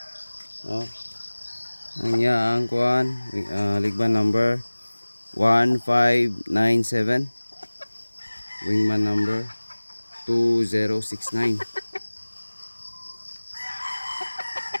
No? Ang kuan, ligban number 1597. Wingman number 2069.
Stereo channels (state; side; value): inverted; both; correlation -1.00